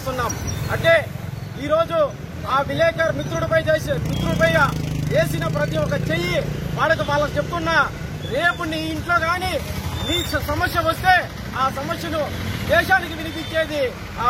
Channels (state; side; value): identical; both; correlation 1.00